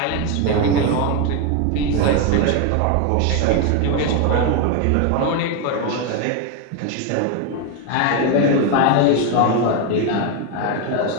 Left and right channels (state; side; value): different; both; correlation 0.01